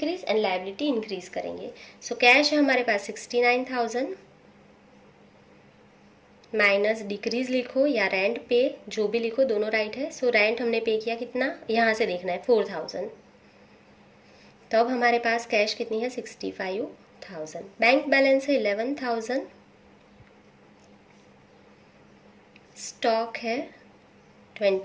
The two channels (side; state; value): both; identical; correlation 1.00